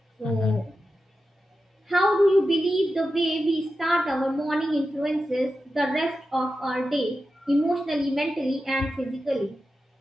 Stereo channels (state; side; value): normal; both; correlation 0.91